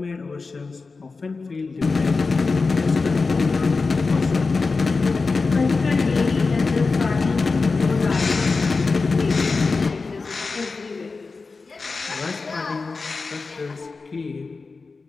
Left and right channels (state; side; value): quieter; right; 4.2 dB